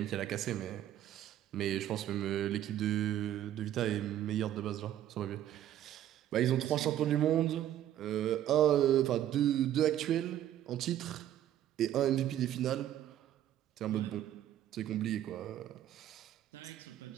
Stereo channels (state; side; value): quieter; left; 11.9 dB